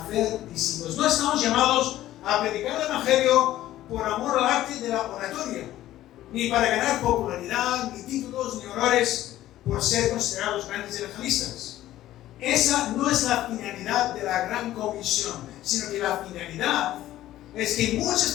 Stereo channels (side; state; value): right; quieter; 14.1 dB